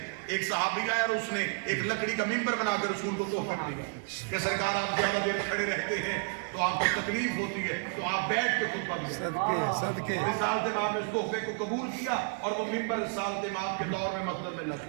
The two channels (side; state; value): left; quieter; 34.6 dB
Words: ایک صحابی آیا اور اس نے ایک لکڑی کا منبر بنا کے رسول کو تحفے میں دیا کہ سرکار آپ زیادہ دیر کھڑے رہتے ہیں تو آپ کو تکلیف ہوتی ہے تو آپ بیٹھ کے خطبہ دیں. رسالت مآب نے اس تحفے کو قبول کیا اور وہ منبر رسالت مآب کے دور میں مسجد میں لگ